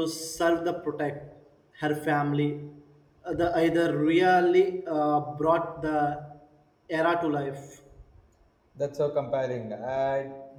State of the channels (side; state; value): both; identical; correlation 1.00